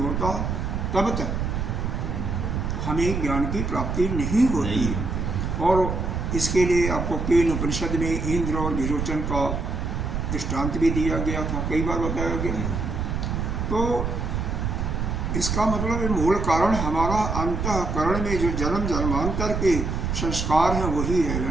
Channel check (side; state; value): right; noise; rumble, 2 dB below the sound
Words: तब तक हमें ज्ञान की प्राप्ति नहीं होती। और इसके लिए आपको केन उपनिषद में इंद्र और विरोचन का दृष्टांत भी दिया गया था, कई बार बताया गया। तो इसका मतलब मूल कारण हमारा अंतःकरण में जो जन्म जन्मांतर के संस्कार हैं वही है,